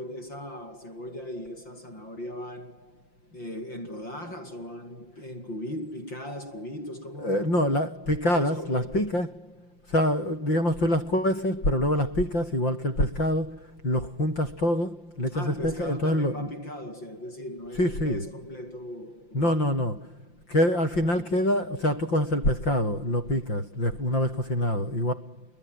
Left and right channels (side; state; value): right; late; 5.8 ms